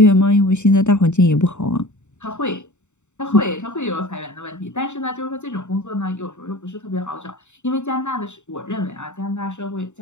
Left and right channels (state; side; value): late; right; 0.84 ms